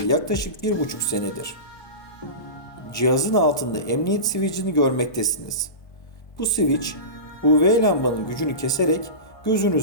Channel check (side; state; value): right; late; 1.2 ms